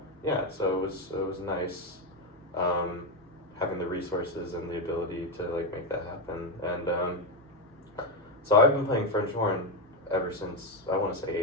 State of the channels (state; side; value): normal; both; correlation 0.09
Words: Yeah, so it was nice. Having the resources and the ability to make that happen, and so I've been playing French horn ever since I want to say